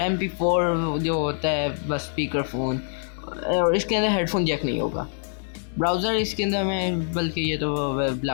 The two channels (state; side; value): silent; right; digital silence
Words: MP4 जो होता है बस स्पीकर फ़ोन, और इसके अंदर हेडफोन जैक नहीं होगा। ब्राउज़र इसके अंदर में बल्कि ये तो